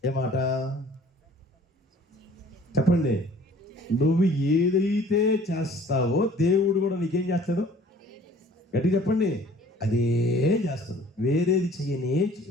ఏ మాట చెప్పండి? నువ్వు ఏదైతే చేస్తావో దేవుడు కూడా నీకేం చేస్తాడు? గట్టిగా చెప్పండి. అదే చేస్తాడు, వేరేది చెయ్యనే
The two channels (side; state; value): both; normal; correlation 0.52